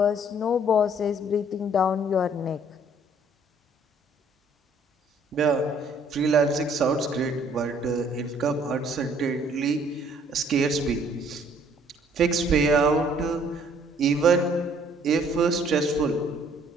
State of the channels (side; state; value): both; normal; correlation 0.60